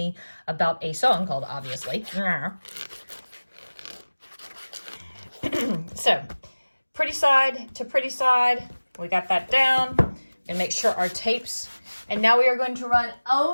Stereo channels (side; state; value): both; inverted; correlation -1.00